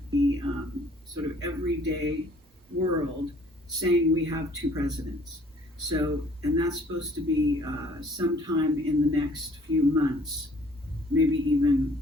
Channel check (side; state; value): both; normal; correlation 0.57